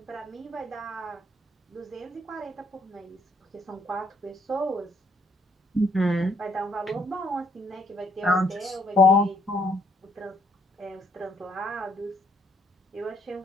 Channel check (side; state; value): both; normal; correlation 0.68